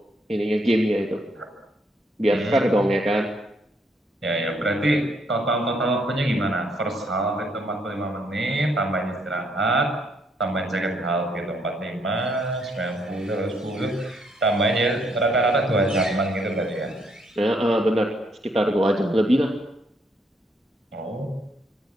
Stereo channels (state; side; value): normal; both; correlation 0.71